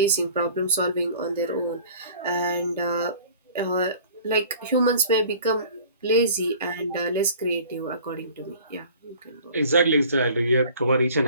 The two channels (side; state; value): both; inverted; correlation -0.47